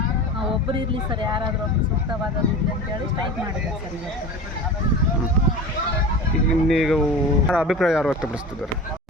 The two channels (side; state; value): both; normal; correlation 0.33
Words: ಒಬ್ಬರು ಇರಲಿ ಸರ್, ಯಾರಾದರೂ ಒಬ್ಬರು ಸೂಕ್ತವಾದದ್ದು ಇರಲಿ ಅಂತೇಳಿ ಸ್ಟ್ರೈಕ್ ಮಾಡಿದ್ದಾರೆ ಸರ್ ಇವತ್ತು. ನೀವು ಅಭಿಪ್ರಾಯ ಯಾರು ವ್ಯಕ್ತಪಡಿಸ್ತಿದ್ದಾರೆ?